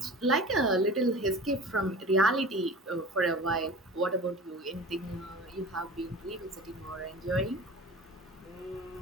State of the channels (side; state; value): both; normal; correlation 0.37